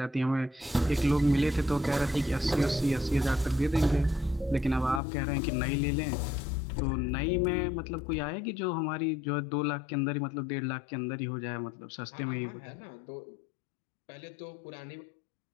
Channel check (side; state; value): right; drops out; at 5.0 s